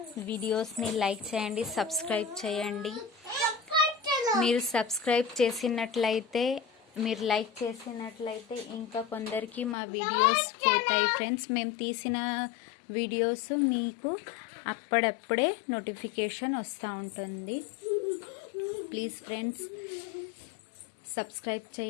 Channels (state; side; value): drops out; right; at 9.8 s